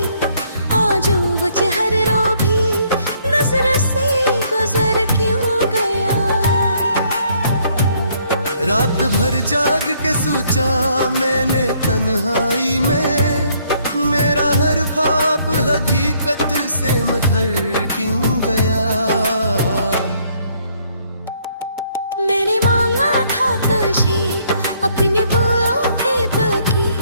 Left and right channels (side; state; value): both; inverted; correlation -0.66